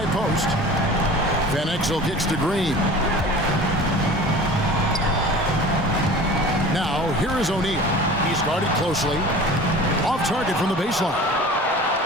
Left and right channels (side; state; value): both; normal; correlation 0.40